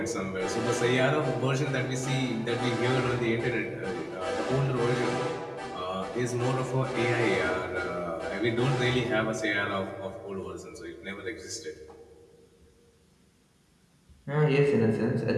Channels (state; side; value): identical; both; correlation 1.00